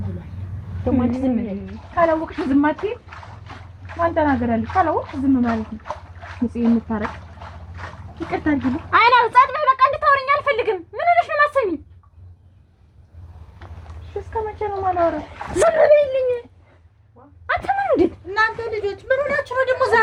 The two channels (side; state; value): both; identical; correlation 1.00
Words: ብሏል። ደግሞ ዝም በይ። ካላወቅሽ ዝም አትይም። ማን ተናገራለሽ? ካላወቅሽ ዝም ማለት ነው። ንጽህ የምታረቅ ይቅርታ አድርጊልኝ። አይና ጸጥ በይ። በቃ እንድታወሪኝ አልፈልግም። ምን ሆነሽ ነው የማሰሚኝ? እስከ መቼ ነው የማላወራው? ዝም በይልኝ። አንተ ምን እንዴት እናንተ ልጆች ምን ሆናችሁ ነው ደግሞ